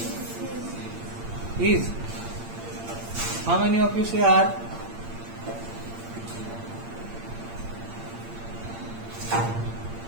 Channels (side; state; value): left; late; 8.7 ms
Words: Is. How many of you say are?